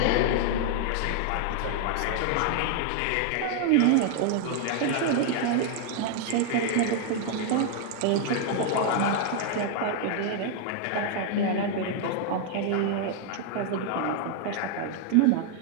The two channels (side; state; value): both; different; correlation 0.00